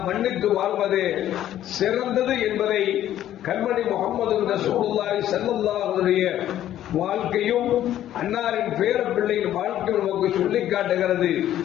மன்னித்து வாழ்வதே சிறந்தது என்பதை கண்மணி முஹம்மது ரசூலுல்லாஹி ஸல்லல்லாஹு அலைஹி வாழ்க்கையும் அன்னாரின் பேர பிள்ளையின் வாழ்க்கை நமக்கு சொல்லிக் காட்டுகிறது.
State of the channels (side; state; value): right; quieter; 12.1 dB